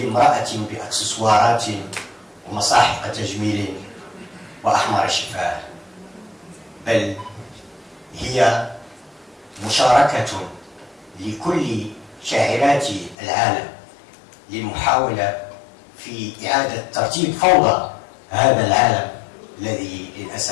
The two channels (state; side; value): drops out; right; at 13.2 s